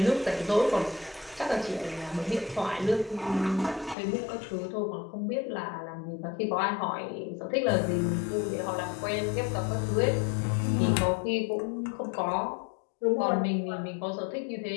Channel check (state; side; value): drops out; right; at 4.0 s